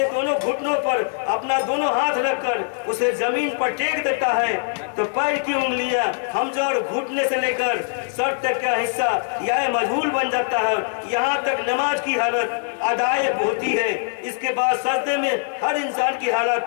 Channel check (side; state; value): right; silent; 64 dB below the other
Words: दोनों घुटनों पर अपना दोनों हाथ रखकर उसे जमीन पर टेक देता है तो पैर की उंगलियां हमजा और घुटने से लेकर सर तक का हिस्सा यह मजहूल बन जाता है। यहाँ तक नमाज की हालत अदाए होती है। इसके बाद सजदे में हर इंसान की